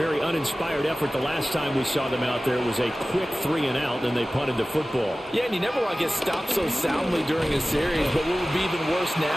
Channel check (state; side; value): normal; both; correlation 0.96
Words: uninspired effort the last time we saw them out there. It was a quick 3-and-out, and they punted the football. Yeah, and you never want to get stopped so soundly during a series, but what would be even worse